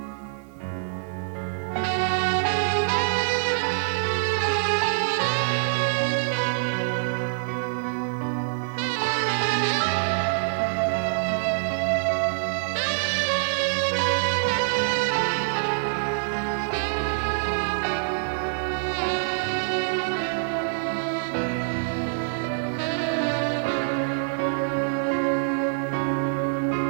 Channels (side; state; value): left; silent; digital silence